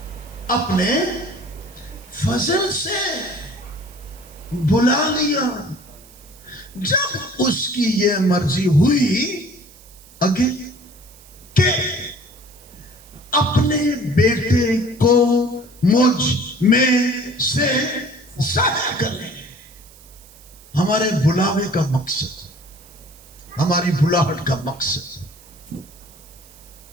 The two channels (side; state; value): right; noise; hiss, 23 dB below the sound